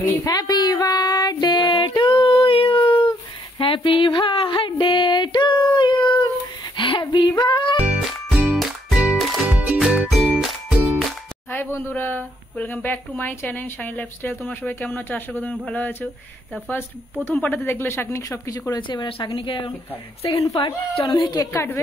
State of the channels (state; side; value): normal; both; correlation 0.70